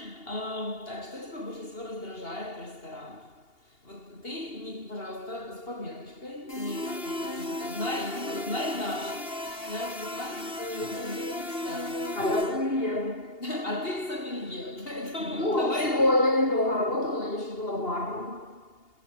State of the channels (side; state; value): right; late; 2.8 ms